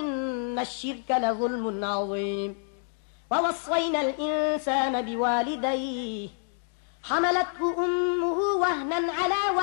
الشرك لظلم عظيم ووصينا الإنسان بوالديه حملته أمه وهنا على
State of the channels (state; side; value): silent; right; 55 dB below the other